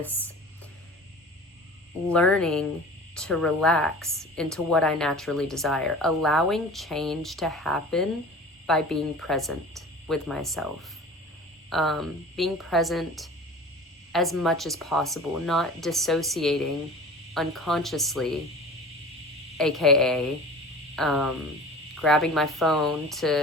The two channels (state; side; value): normal; both; correlation 0.39